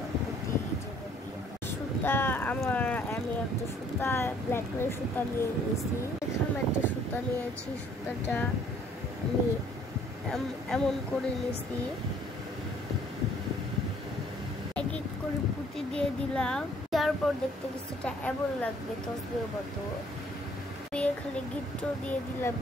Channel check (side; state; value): both; normal; correlation 0.60